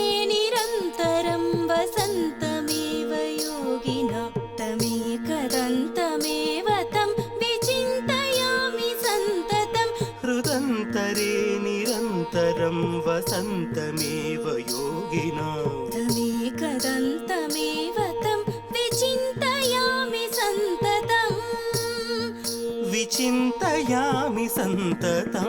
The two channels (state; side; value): identical; both; correlation 1.00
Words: निरन्तरं वसन्तमेव योगिना तमेकदन्तमेव तं विचिन्तयामि सन्ततं हृदन्तरे निरन्तरं वसन्तमेव योगिना तमेकदन्तमेव तं विचिन्तयामि सन्ततम् विचिन्तयामि